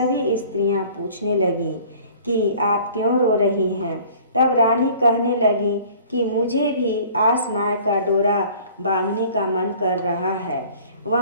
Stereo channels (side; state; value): both; inverted; correlation -0.50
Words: स्त्रियां पूछने लगीं कि आप क्यों रो रही हैं। तब रानी कहने लगी कि मुझे भी आस माई का डोरा बांधने का मन कर रहा है।